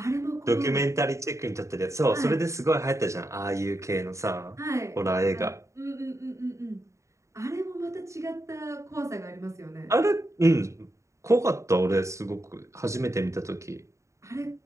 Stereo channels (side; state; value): left; late; 0.14 ms